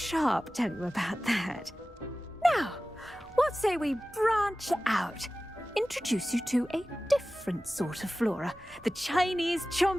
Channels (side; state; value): both; normal; correlation 0.96